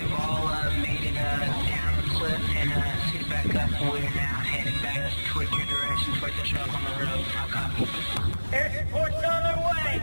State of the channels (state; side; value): inverted; both; correlation -1.00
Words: all made it down the cliff and suited back up. We're now heading back towards your direction, towards the truck on the road. I'll copy. Air support's on their